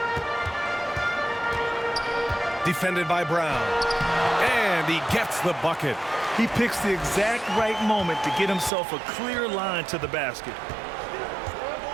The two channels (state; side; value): drops out; left; at 8.7 s